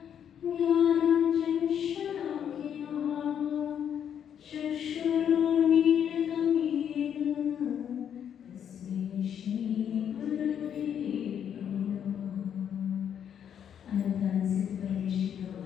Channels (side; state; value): right; quieter; 8.8 dB